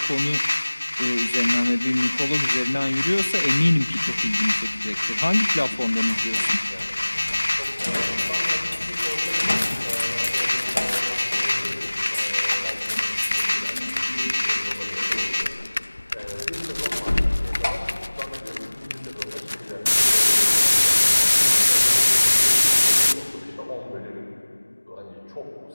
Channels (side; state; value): both; inverted; correlation -1.00